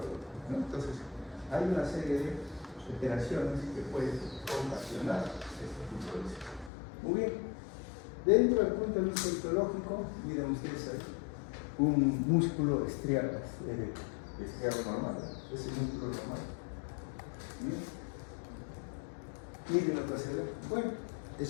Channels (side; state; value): right; drops out; at 6.7 s